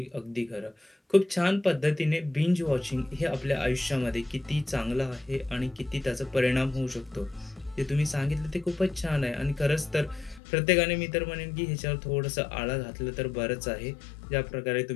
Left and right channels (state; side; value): drops out; right; at 10.4 s